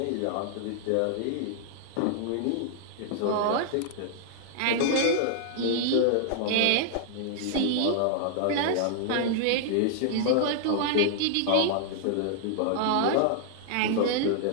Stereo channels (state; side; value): different; both; correlation -0.01